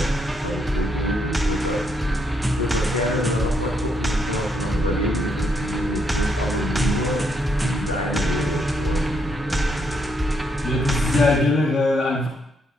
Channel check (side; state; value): both; normal; correlation 0.75